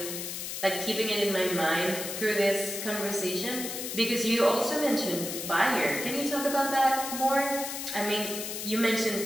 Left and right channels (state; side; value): noise; left; hiss, 6 dB below the sound